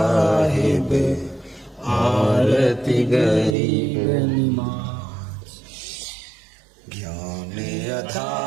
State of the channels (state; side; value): drops out; left; at 3.6 s